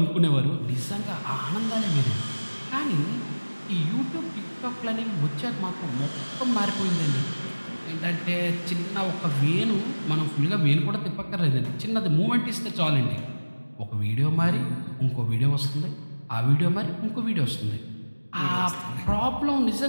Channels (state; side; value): inverted; both; correlation -1.00